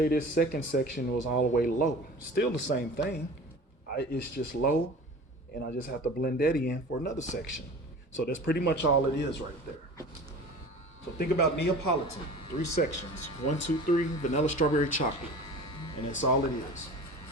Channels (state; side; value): normal; both; correlation 0.39